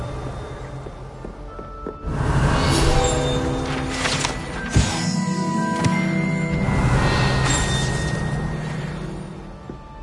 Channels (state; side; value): identical; both; correlation 1.00